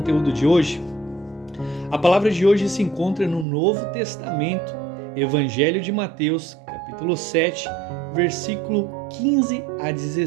de hoje. A palavra de hoje se encontra no Novo Testamento, Evangelho de Mateus, capítulo 7, versículo 15 a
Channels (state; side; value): drops out; left; at 3.5 s